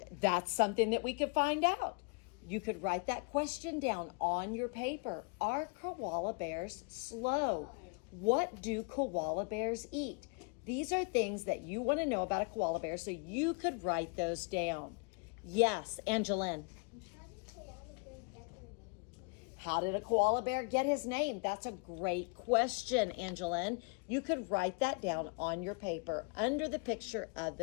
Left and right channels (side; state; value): right; quieter; 34.6 dB